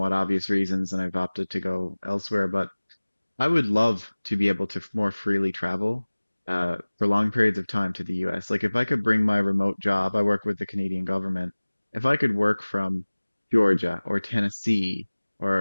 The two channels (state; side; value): inverted; both; correlation -1.00